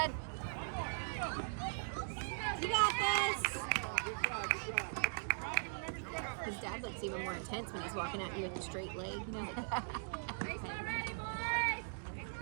You got this! His dad looks even more intense when he's walking at you with a straight leg. You know, like,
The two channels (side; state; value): left; silent; digital silence